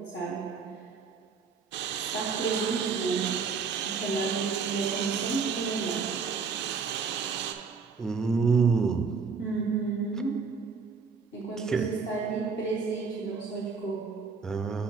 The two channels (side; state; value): left; quieter; 5.3 dB